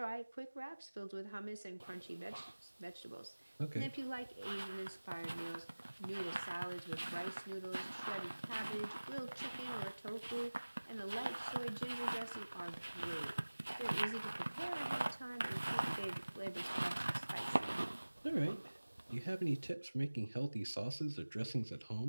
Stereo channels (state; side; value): inverted; both; correlation -1.00